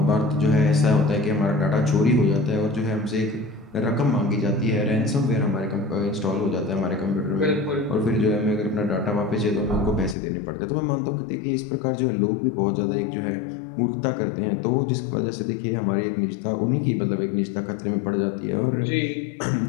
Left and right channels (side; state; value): right; drops out; at 10.2 s